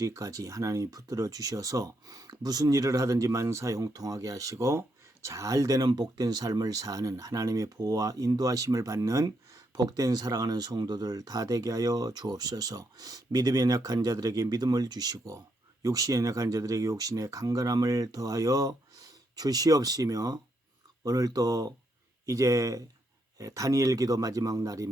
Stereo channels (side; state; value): both; normal; correlation 0.78